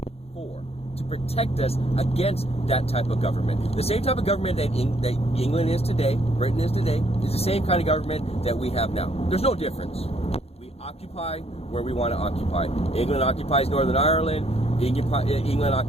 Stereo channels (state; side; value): late; right; 0.29 ms